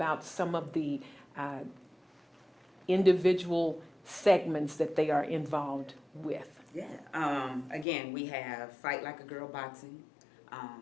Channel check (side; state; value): right; drops out; at 7.9 s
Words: some of the individual segments that they are involved with? Yeah. Again, we have Fight Like a Girl boxing.